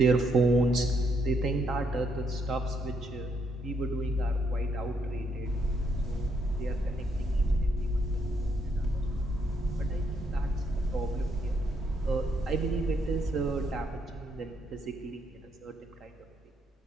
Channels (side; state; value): both; normal; correlation 0.74